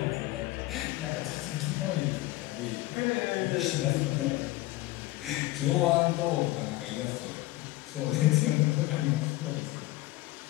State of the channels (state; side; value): quieter; right; 18.2 dB